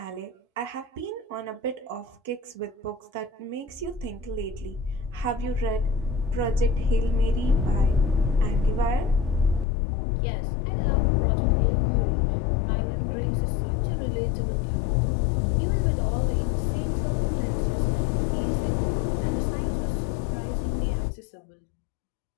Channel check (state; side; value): drops out; right; at 9.7 s